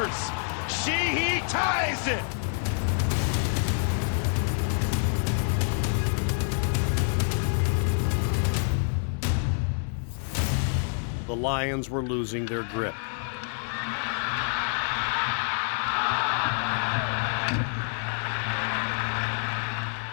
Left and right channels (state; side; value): silent; right; 60 dB below the other